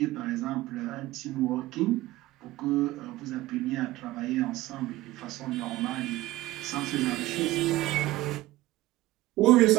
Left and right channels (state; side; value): quieter; left; 17.2 dB